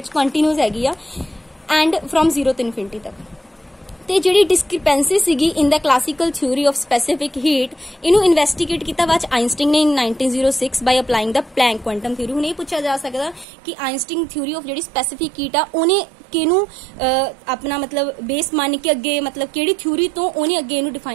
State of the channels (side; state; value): left; drops out; at 13.5 s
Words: कंटीन्यूअस हैगी आ, एंड फ्रॉम 0 to इनफिनिटी तक। ਤੇ ਜਿਹੜੀ ਡਿਸਕ੍ਰਿਪੈਂਸੀ ਸੀਗੀ in the classical theory of specific heat, ਇਹਨੂੰ ਇਨਵੈਸਟੀਗੇਟ ਕੀਤਾ ਬਾਅਦ ਆਇਨਸਟੀਨ ਨੇ in 1906 by applying the Planck quantum theory. ਹੁਣ ਇਹ ਪੁੱਛਿਆ ਜਾ ਸਕਦਾ ਕਿ ਆਇਨਸਟੀਨ ਥਿਊਰੀ ਆਫ ਜਿਹੜੀ ਸਪੈਸੀਫਿਕ ਹੀਟ ਆ ਉਹਨੇ ਕਿਹਨੂੰ ਆਪਣਾ ਮਤਲਬ ਬੇਸ ਮੰਨ ਕੇ ਅੱਗੇ, ਮਤਲਬ ਕਿਹੜੀ ਥਿਊਰੀ ਤੋਂ ਉਹਨੇ ਅੱਗੇ ਇਹਨੂੰ